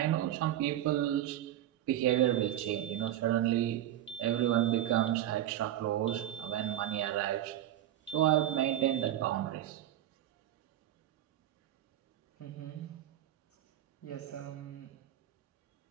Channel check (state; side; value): quieter; left; 12.6 dB